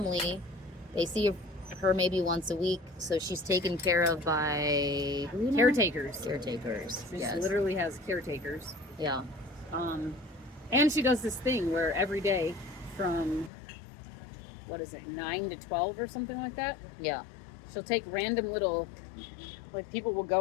They see her maybe once a week, so she's taken care of by who now? Caretakers. Caretakers. She Yes. literally has caretakers. Yeah. And she does this thing where every day from, 9 to 12 or something like that, Yeah. she'll take random little, like people will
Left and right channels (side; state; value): right; drops out; at 13.5 s